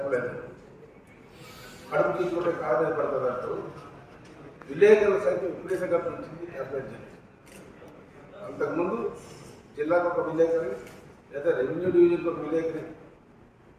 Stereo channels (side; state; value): both; identical; correlation 1.00